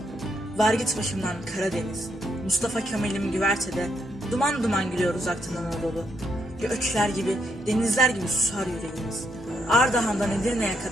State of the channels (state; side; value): normal; both; correlation 0.77